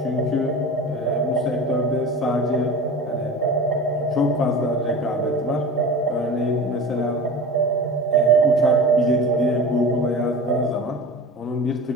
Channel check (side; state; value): both; normal; correlation 0.34